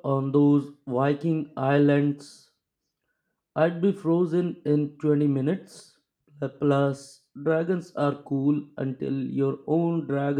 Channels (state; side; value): identical; both; correlation 1.00